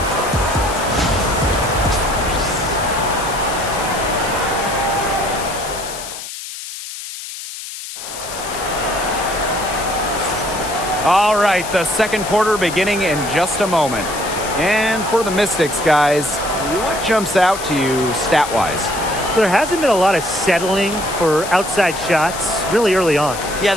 All right, the second quarter beginning in just a moment. And for the Mystics, guys, what jumps out to you stat-wise? There hasn't been a lot of settling for outside shots really early on. Yeah,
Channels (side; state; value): left; noise; hiss, 10 dB below the sound